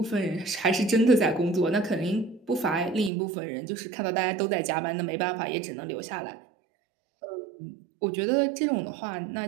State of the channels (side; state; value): left; drops out; at 3.1 s